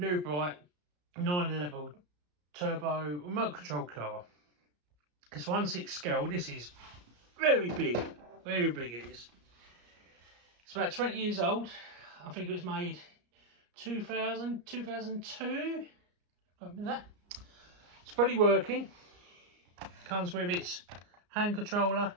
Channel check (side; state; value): left; late; 34 ms